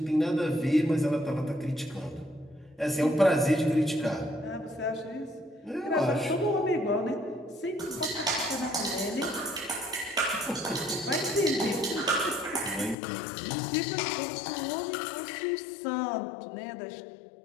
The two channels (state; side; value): drops out; right; at 13.0 s